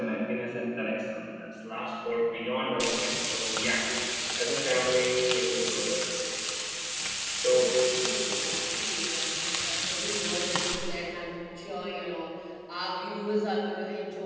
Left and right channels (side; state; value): both; identical; correlation 1.00